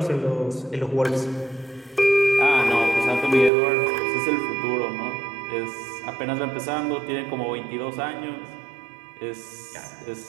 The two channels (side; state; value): left; drops out; at 3.5 s